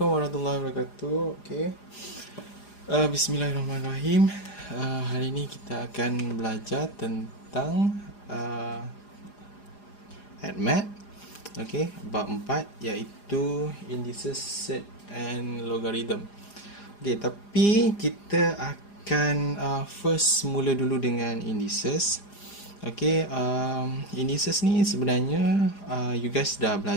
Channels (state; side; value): late; right; 4.9 ms